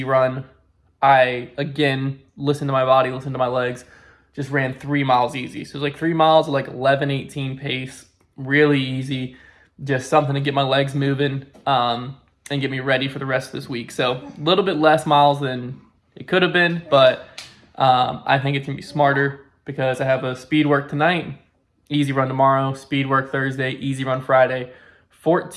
run, I, again, listened to my body, listened to my legs, just ran 3 miles easy. So it was like 3 miles at like 11:18 pace, really easy, just something to get my legs moving and get me ready for the rest of this week. So a little bit less miles than it could have been, but I think it's going to be smarter because I have a speed work tonight, easy run tomorrow, speed work Thursday, easy run Friday,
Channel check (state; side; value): identical; both; correlation 1.00